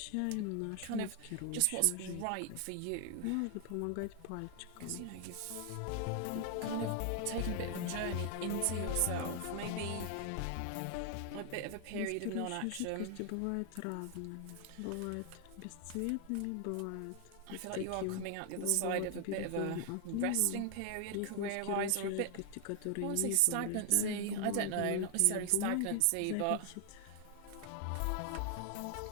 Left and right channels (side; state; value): both; different; correlation 0.00